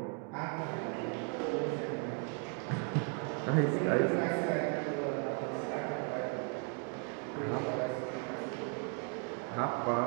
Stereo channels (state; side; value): quieter; left; 37.4 dB